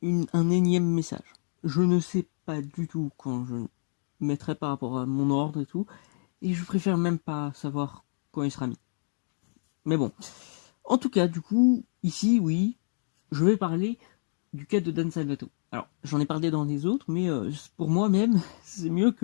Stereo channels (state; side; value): silent; right; digital silence